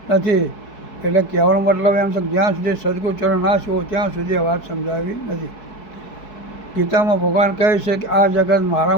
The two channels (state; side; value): late; right; 4.6 ms